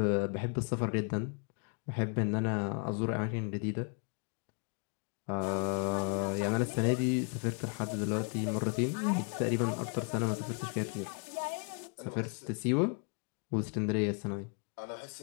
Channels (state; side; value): quieter; right; 39.5 dB